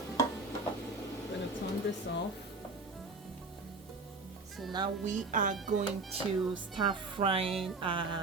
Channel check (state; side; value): quieter; left; 3.5 dB